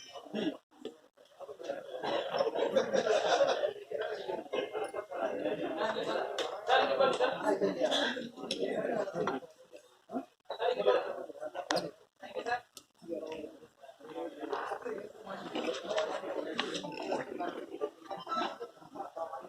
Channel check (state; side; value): identical; both; correlation 1.00